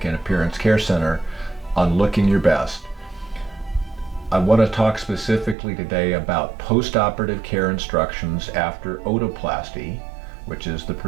and Appearance Care Center on Looking Your Best. I want to talk specifically today about post-operative care instructions after otoplasty, which is the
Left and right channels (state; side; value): drops out; left; at 5.6 s